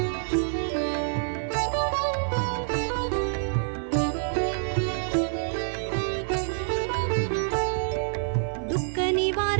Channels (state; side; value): silent; left; digital silence